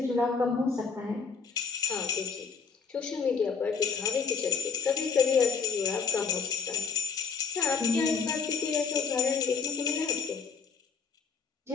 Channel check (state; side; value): quieter; right; 5.5 dB